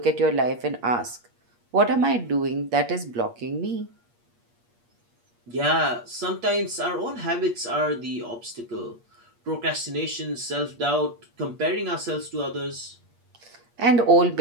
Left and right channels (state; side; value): late; left; 8.5 ms